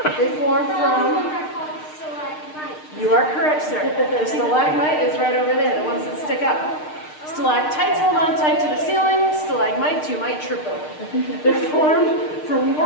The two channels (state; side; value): late; right; 6.6 ms